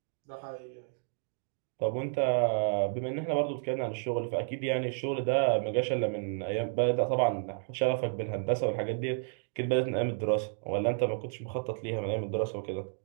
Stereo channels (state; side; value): silent; left; digital silence